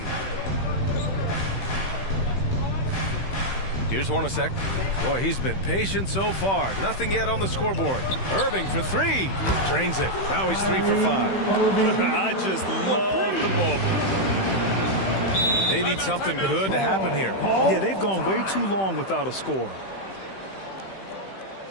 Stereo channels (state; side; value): late; right; 15 ms